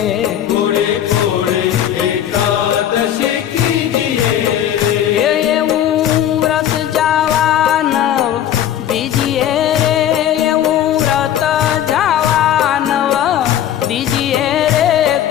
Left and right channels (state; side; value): quieter; right; 10.8 dB